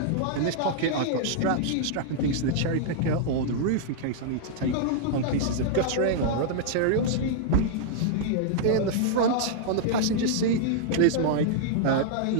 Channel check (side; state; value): both; different; correlation -0.01